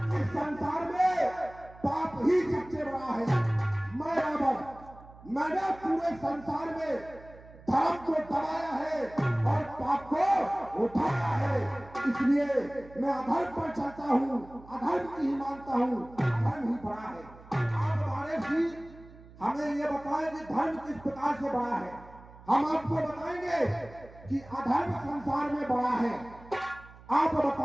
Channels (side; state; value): right; noise; hum, 21 dB below the sound